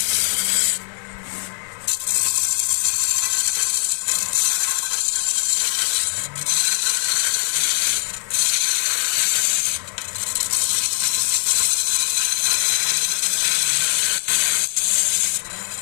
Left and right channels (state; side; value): silent; right; 60 dB below the other